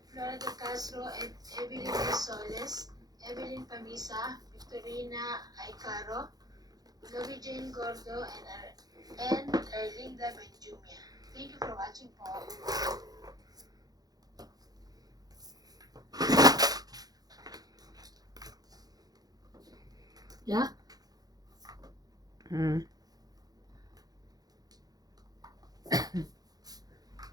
Flora de Castro, Evelyn Soles, Evelyn Pamisa, Victorina Aicaro, Lovie Jane Gordo, and Erlinda Benjumia. Thank you for watching po. Yeah. Hmm.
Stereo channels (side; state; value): left; late; 0.19 ms